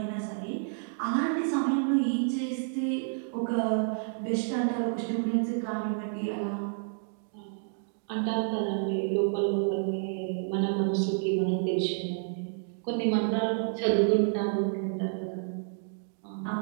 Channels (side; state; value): left; silent; digital silence